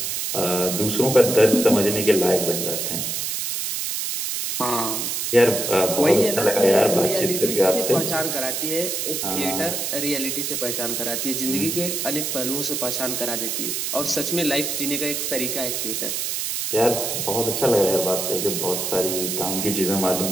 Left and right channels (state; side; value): noise; right; hiss, 2 dB below the sound